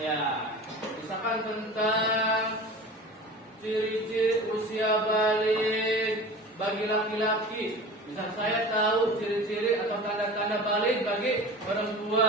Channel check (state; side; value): normal; both; correlation 0.37